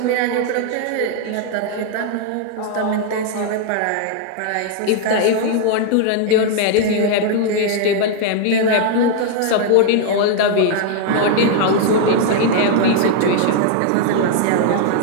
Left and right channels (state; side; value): different; both; correlation 0.00